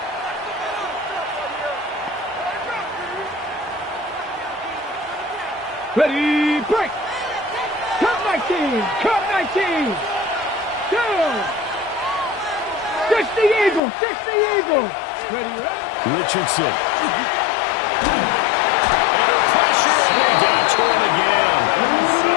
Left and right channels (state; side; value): drops out; right; at 13.8 s